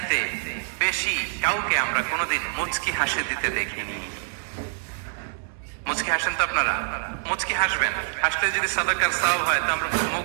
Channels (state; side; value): silent; left; digital silence